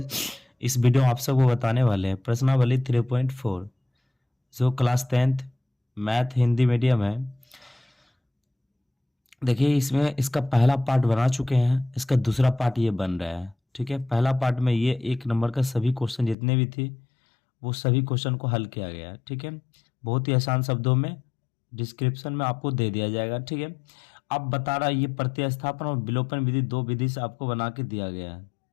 इस video में आप सबको बताने वाले हैं प्रश्नावली 3.4 जो class 10th math Hindi medium है। देखिए, इसमें इसका पहला पार्ट बना चुके हैं, इसका दूसरा पार्ट ये बन रहा है। ठीक है, पहला पार्ट में ये 1 नंबर का सभी क्वेश्चन जितने भी थे वो सभी क्वेश्चन को हल किया गया है। ठीक है, बहुत ही आसान शब्दों में डिस्क्रिप्शन में आपको दे दिया जाएगा। ठीक है, अब बता रहा है ये प्रतिस्थापन और विलोपन विधि 2 विधि से आपको बना के दिया गया है।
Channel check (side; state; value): right; drops out; at 16.4 s